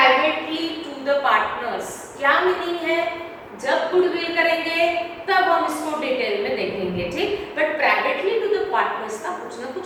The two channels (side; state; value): both; identical; correlation 1.00